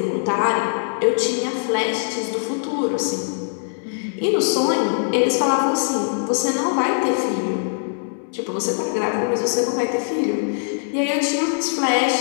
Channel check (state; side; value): silent; right; 64 dB below the other